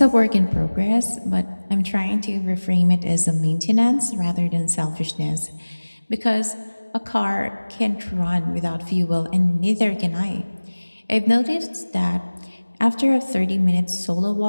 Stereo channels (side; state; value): both; inverted; correlation -1.00